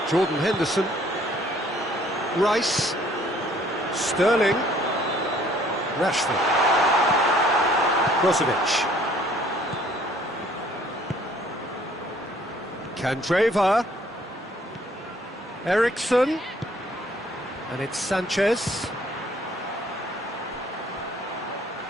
Jordan Henderson, Rice, Sterling, Rashford, Brozovic, Candreva, Eriksson, and it's Sanchez.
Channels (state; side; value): normal; both; correlation 0.59